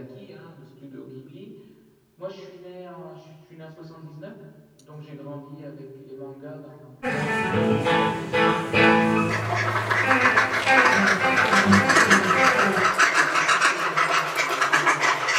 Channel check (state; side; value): identical; both; correlation 1.00